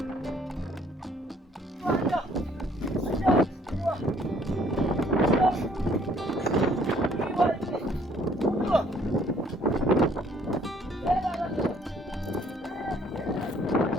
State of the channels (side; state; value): both; normal; correlation 0.61